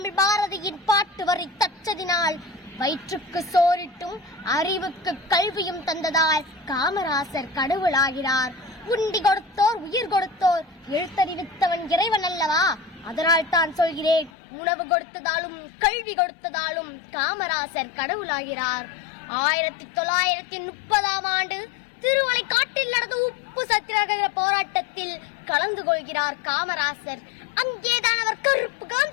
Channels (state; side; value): drops out; right; at 14.3 s